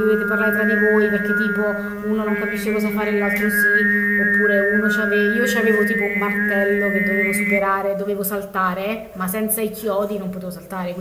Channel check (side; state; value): both; identical; correlation 1.00